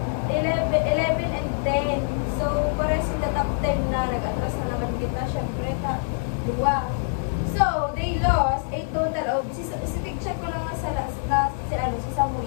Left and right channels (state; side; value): silent; right; digital silence